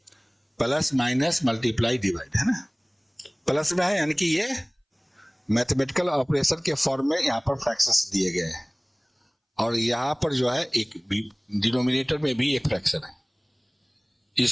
प्लस माइनस मल्टीप्लाई डिवाइड, है ना। प्लस में है यानी कि ये मैथमेटिकल ऑपरेशन के फॉर्म में यहाँ पर फ्रैक्शंस दिए गए हैं, और यहाँ पर जो है एक डिनोमिनेटर में भी एक फ्रैक्शन है।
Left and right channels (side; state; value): both; identical; correlation 1.00